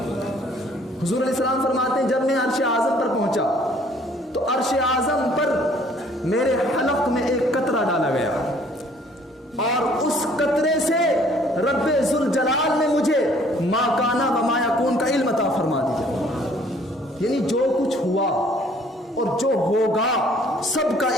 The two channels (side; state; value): both; normal; correlation 0.58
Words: حضور علیہ السلام فرماتے ہیں جب میں عرش اعظم پر پہنچا تو عرش اعظم پر میرے حلق میں ایک قطرہ ڈالا گیا، اور اس قطرے سے رب ذوالجلال نے مجھے ما کانا و ما یکون کا علم عطا فرما دیا، یعنی جو کچھ ہوا اور جو ہوگا سب کا